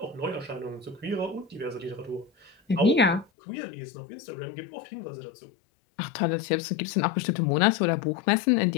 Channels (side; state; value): right; drops out; at 3.2 s